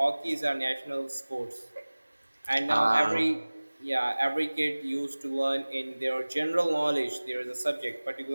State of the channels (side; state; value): both; inverted; correlation -1.00